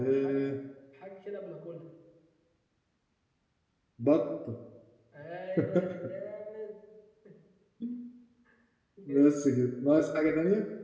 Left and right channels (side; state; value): both; identical; correlation 1.00